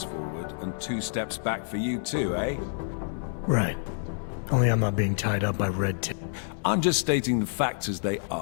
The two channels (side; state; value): right; silent; digital silence